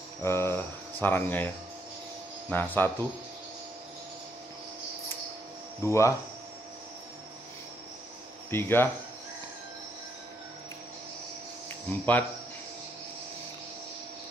sarangnya, ya. Nah, 1, 2, 3, 4,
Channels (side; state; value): both; normal; correlation 0.75